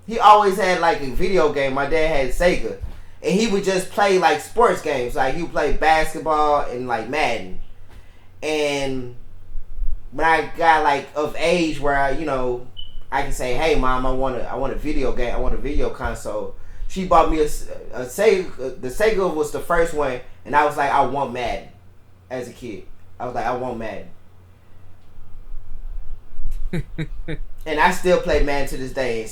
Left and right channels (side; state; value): both; identical; correlation 1.00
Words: he always had like a video game. My dad had Sega. And he would just play like sports games. Like he would play basketball and like Madden. And when I got like of age where I can say, "Hey mom, I want a video game. I want a video console." She bought me a Sega. The Sega was the first one. And I was like, I want Madden. As a kid. I was like, I want Madden. And I still play Madden to this day and